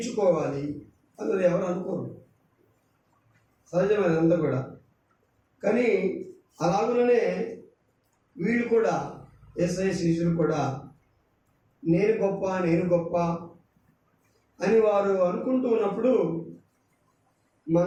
అన్నది ఎవరు అనుకోరు. సహజమైన అంతా కూడా. కానీ అలాగనే వీళ్ళు కూడా, యేసయ్య శిష్యులు కూడా నేను గొప్ప అని వారు అనుకుంటూ ఉన్నప్పుడు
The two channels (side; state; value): both; identical; correlation 1.00